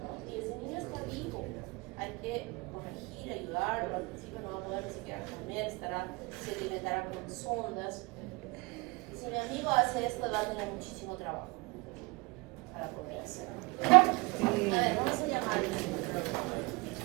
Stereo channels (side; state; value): left; quieter; 26.5 dB